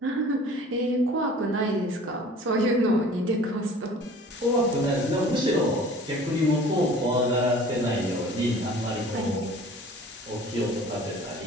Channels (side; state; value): both; normal; correlation 0.46